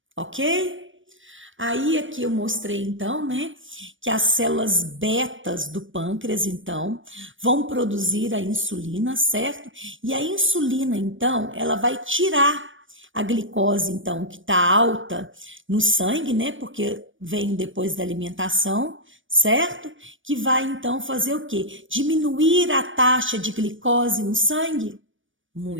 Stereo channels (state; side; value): late; left; 0.57 ms